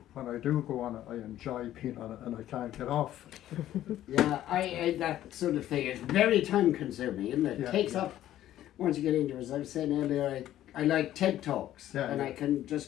when I do go on it, I enjoy being on it and I can't get off. Yeah, I that sort of thing is very time consuming, isn't it? It takes up, once you get into it, as I was saying earlier, I like TED Talks and I can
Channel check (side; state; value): right; quieter; 12.9 dB